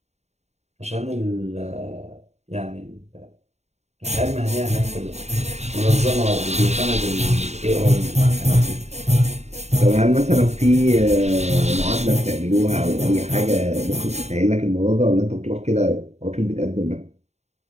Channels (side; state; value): left; late; 0.32 ms